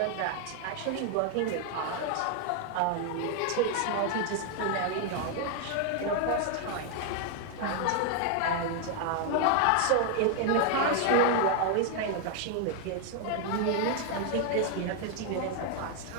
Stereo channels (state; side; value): different; both; correlation 0.00